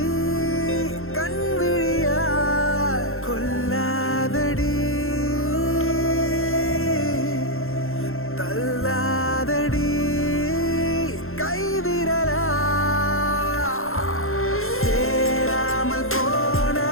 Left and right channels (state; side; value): late; right; 0.61 ms